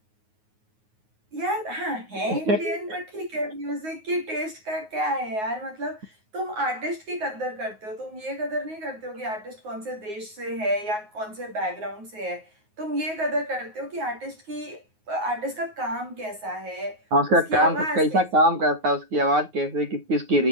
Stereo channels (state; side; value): late; left; 9.4 ms